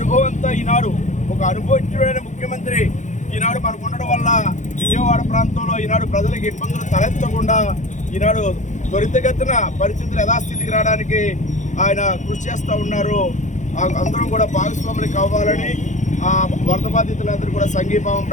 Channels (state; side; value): late; right; 0.35 ms